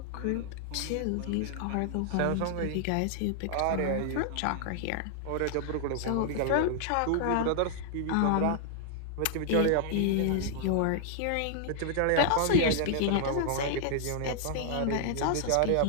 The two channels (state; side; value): different; both; correlation -0.01